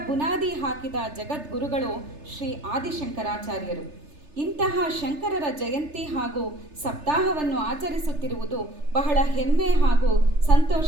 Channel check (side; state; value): left; late; 3.3 ms